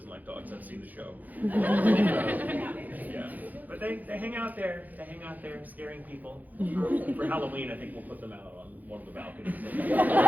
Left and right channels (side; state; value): left; late; 0.082 ms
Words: like dogs. I've seen the show. Yeah. But they hang out there. They hang out there scaring people. For Halloween, I think we'll put them out on one of the balconies.